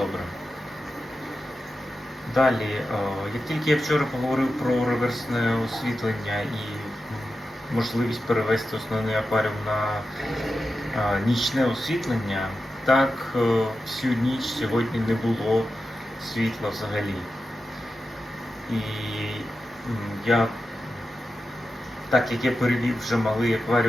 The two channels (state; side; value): normal; both; correlation 0.91